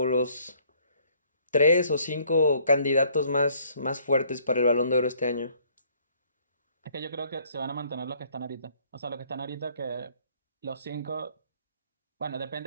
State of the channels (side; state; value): both; inverted; correlation -0.62